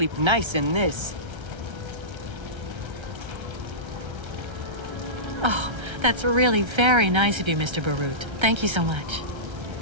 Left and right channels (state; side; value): late; left; 1.3 ms